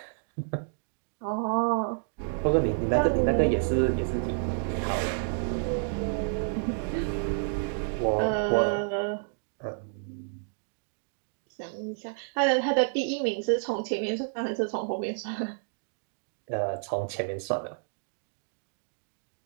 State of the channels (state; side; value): silent; left; digital silence